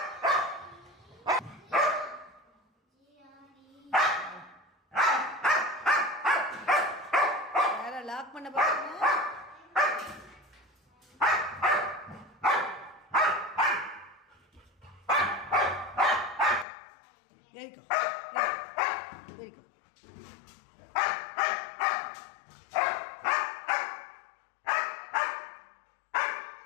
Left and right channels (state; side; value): drops out; right; at 16.7 s